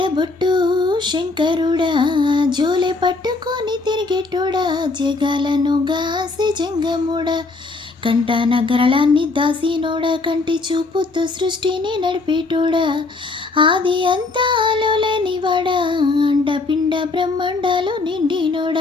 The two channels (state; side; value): quieter; right; 3.6 dB